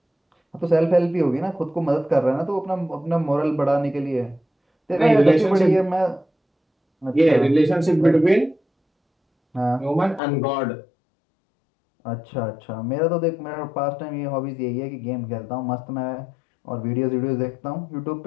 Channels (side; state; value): right; drops out; at 10.2 s